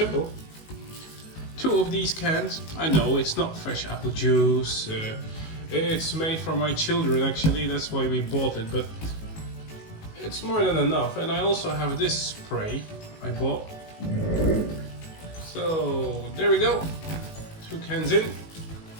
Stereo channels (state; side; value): late; right; 19 ms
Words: 2 of these cans. I know it's not fresh apple juice. It's made for my children actually, that's why we bought it, but it's more than enough. And I also have this spray I bought. So there we go. 2 cans in.